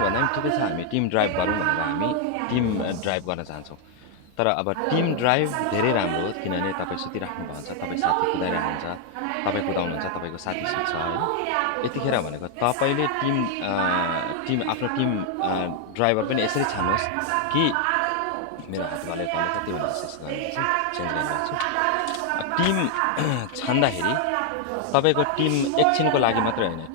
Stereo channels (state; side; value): different; both; correlation 0.00